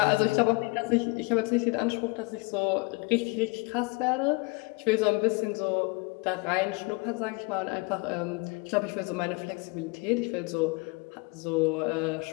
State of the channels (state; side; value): quieter; right; 27.8 dB